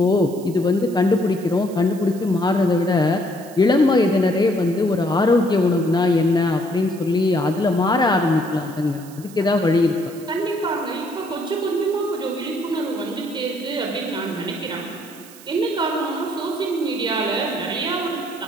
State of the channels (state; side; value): noise; right; hiss, 21 dB below the sound